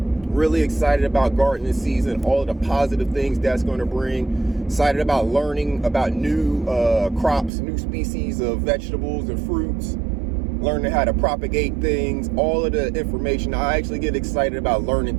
excited about gardening season, all of the positive things that's going to bring. Excited about learning about new crops, new species of vegetables and fruits. Learning how to propagate things, all of the information. I actually get excited about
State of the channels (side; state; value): left; drops out; at 7.5 s